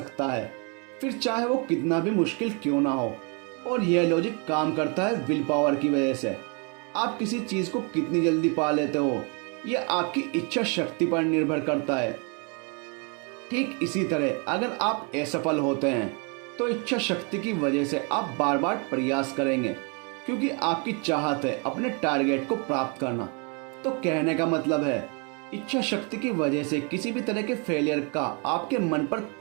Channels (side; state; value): left; quieter; 34.9 dB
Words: है, फिर चाहे वो कितना भी मुश्किल क्यों ना हो। और यह लॉजिक काम करता है विल पावर की वजह से। आप किसी चीज को कितनी जल्दी पा लेते हो यह आपकी इच्छा शक्ति पर निर्भर करता है। ठीक इसी तरह अगर आप असफल होते हैं तो इच्छा शक्ति की वजह से आप बार बार प्रयास करेंगे, क्योंकि आपकी चाहत है अपने टारगेट को प्राप्त करना। तो कहने का मतलब है इच्छा शक्ति की वजह से किसी भी तरह के फेलियर का आपके मन पर